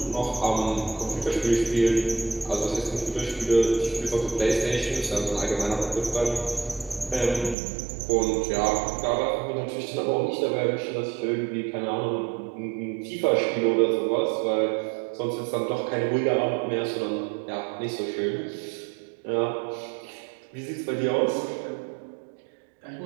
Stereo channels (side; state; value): left; drops out; at 7.6 s